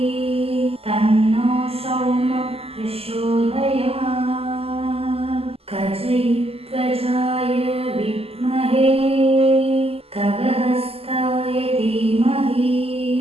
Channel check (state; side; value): late; left; 0.29 ms